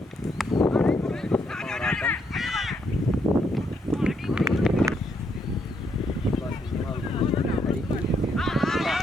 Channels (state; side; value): normal; both; correlation 0.75